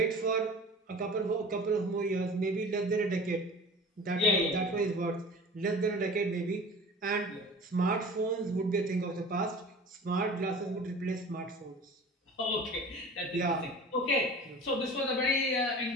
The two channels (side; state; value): both; normal; correlation 0.40